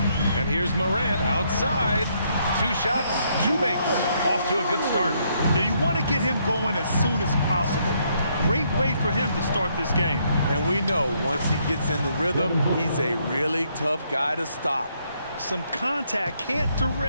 And here's Morant outside. 2 shots, 2 makes. Off to a good start. Now you want to get him going as soon as possible. Great way for him to start this game. And we know once he gets in the rhythm, he's a really tough guy to stop. Some contact can't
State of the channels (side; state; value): both; inverted; correlation -0.72